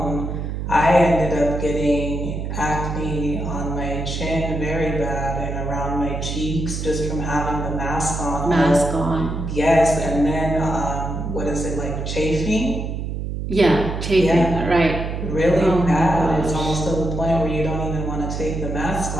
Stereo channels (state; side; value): noise; right; hum, 4 dB below the sound